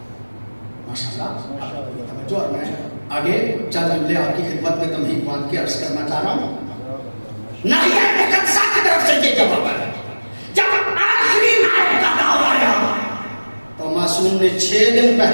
ماشاءاللہ. توجہ. اور میں آگے چند جملے آپ کی خدمت میں تمہید باندھ کے عرض کرنا چاہ رہا ہوں. ناحیہ مقدسہ کی طرف سے یہ جواب ہے. جب آخری نائب کا دور آیا تو معصوم نے 6 دن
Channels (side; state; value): both; inverted; correlation -1.00